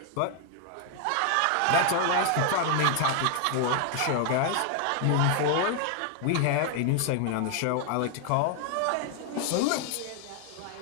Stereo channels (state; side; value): different; both; correlation 0.00